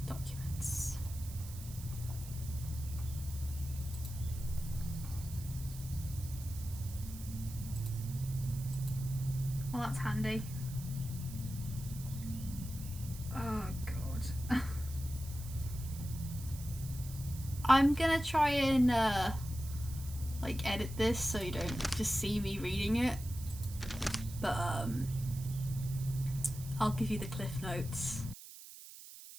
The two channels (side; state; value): right; noise; hiss, 15 dB below the sound